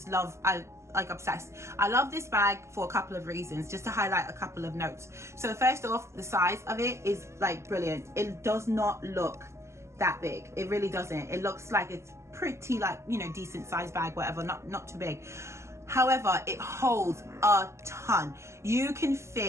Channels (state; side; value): late; left; 0.13 ms